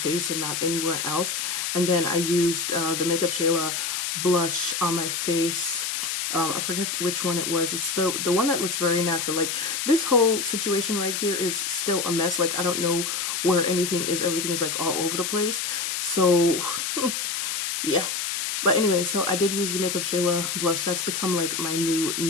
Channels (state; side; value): noise; left; hiss, 2 dB below the sound